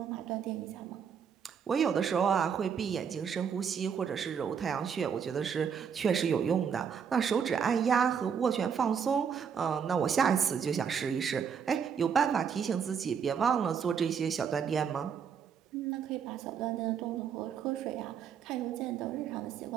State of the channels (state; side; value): quieter; left; 7.1 dB